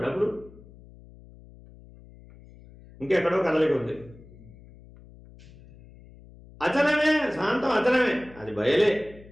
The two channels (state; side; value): noise; left; hum, 22 dB below the sound